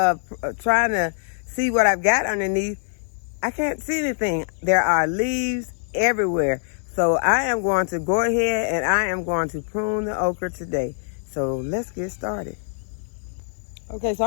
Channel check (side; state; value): right; silent; 63 dB below the other